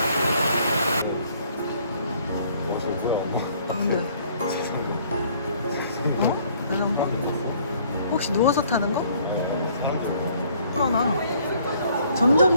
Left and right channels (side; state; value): both; inverted; correlation -0.61